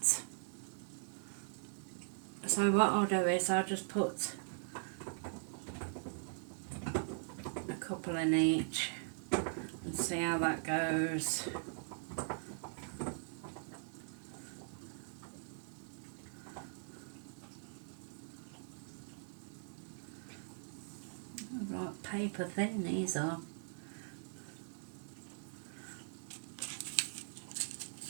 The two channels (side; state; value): left; silent; digital silence